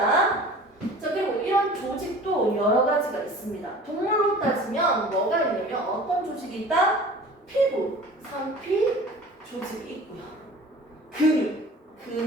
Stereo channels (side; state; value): both; normal; correlation 0.43